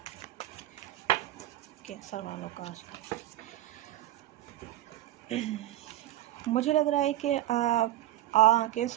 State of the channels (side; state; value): left; quieter; 14.4 dB